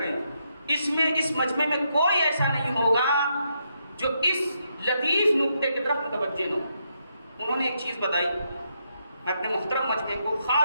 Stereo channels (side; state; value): both; inverted; correlation -0.79